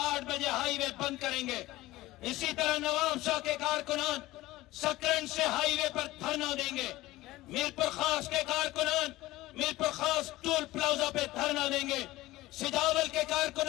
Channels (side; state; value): right; quieter; 17.7 dB